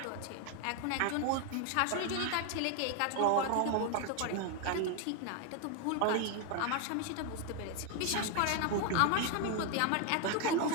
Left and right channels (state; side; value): different; both; correlation 0.00